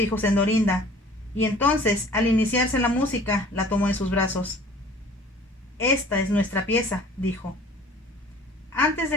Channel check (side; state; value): both; normal; correlation 0.49